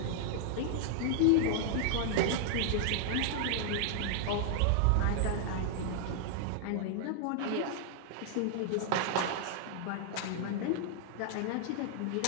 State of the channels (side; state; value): both; different; correlation -0.01